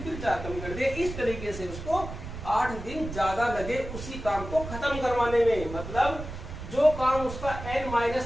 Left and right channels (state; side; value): noise; right; rumble, 9 dB below the sound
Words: फिर 4 कम कर दिए। इस तरीके से उसको 8 दिन ज्यादा लगे उसी काम को खत्म करवाने में। मतलब जो काम उसका